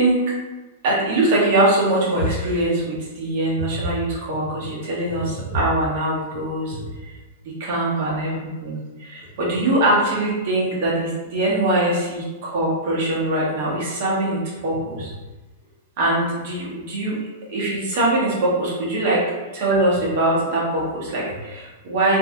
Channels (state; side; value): normal; both; correlation -0.20